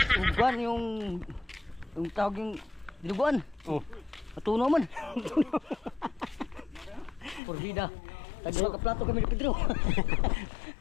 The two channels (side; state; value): right; drops out; at 7.4 s